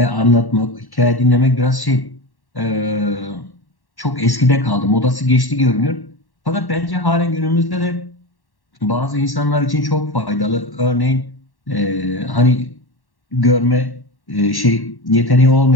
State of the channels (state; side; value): late; right; 1.1 ms